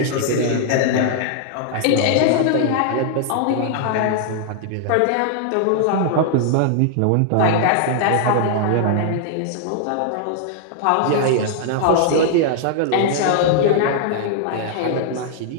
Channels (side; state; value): both; different; correlation -0.01